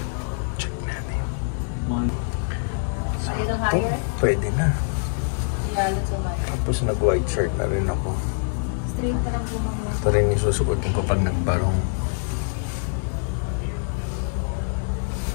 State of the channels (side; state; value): right; silent; digital silence